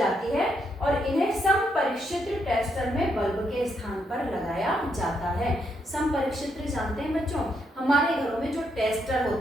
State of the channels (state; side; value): normal; both; correlation 0.77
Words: है और इन्हें समपरिक्षित्र टेस्टर में बल्ब के स्थान पर लगाया जाता है। समपरिक्षित्र जानते हैं बच्चों? हमारे घरों में जो टेस्टर